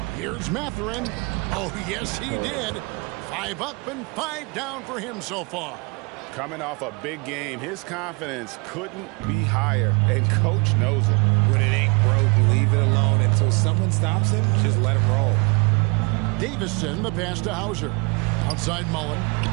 Here's Mathurin. Oh, yes, he did. 5 up and 5 down for him so far. Coming off a big game, his confidence couldn't be higher, and Coach knows it. When it ain't broke, leave it alone. Until someone stops him, just let him roll. Davison, the pass to Hauser. Outside Mullen.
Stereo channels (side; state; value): left; quieter; 29.9 dB